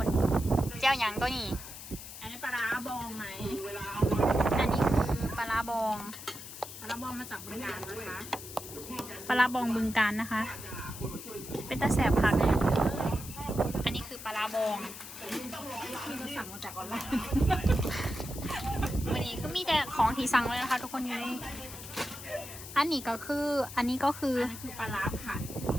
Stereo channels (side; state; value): left; noise; hiss, 12 dB below the sound